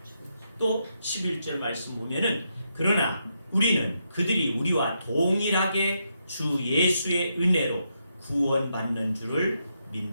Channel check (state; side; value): inverted; both; correlation -0.81